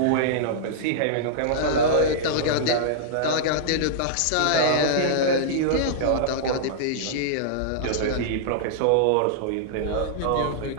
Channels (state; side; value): different; both; correlation -0.02